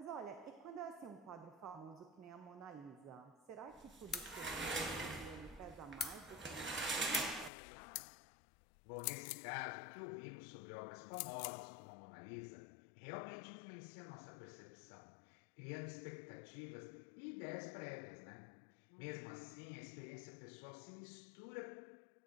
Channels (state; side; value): drops out; right; at 7.5 s